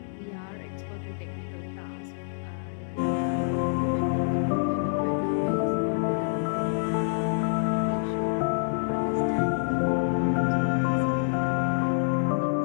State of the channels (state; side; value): silent; right; digital silence